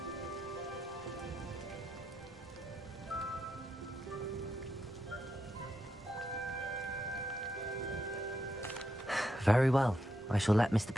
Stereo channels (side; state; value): both; normal; correlation 0.83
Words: Very well. I shall let Mr.